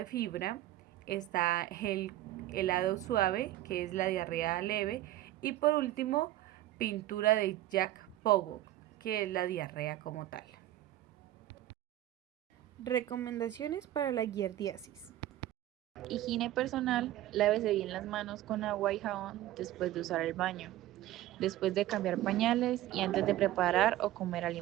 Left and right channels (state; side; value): quieter; left; 14.5 dB